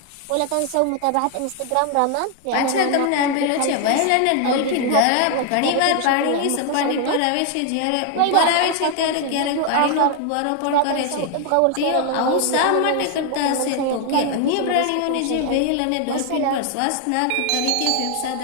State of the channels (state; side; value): different; both; correlation 0.00